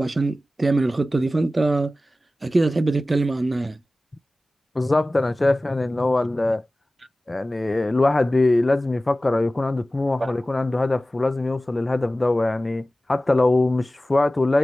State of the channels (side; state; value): both; normal; correlation 0.96